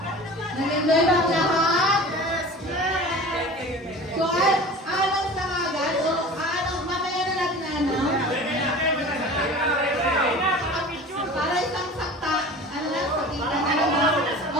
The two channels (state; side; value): normal; both; correlation 0.38